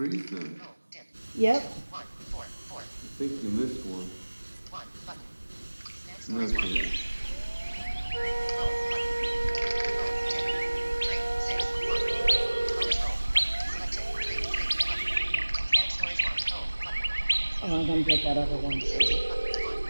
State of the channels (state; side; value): inverted; both; correlation -1.00